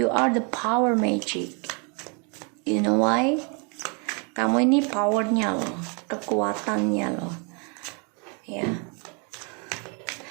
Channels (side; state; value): left; quieter; 35.1 dB